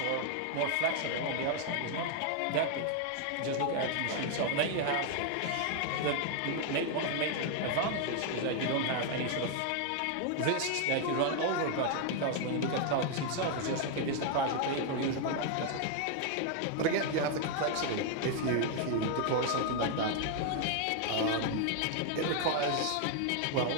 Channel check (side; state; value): both; different; correlation 0.00